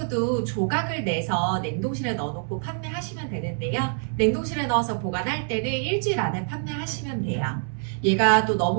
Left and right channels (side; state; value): left; silent; digital silence